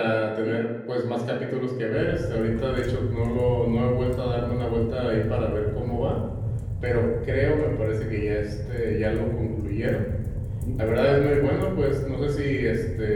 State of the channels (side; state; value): both; identical; correlation 1.00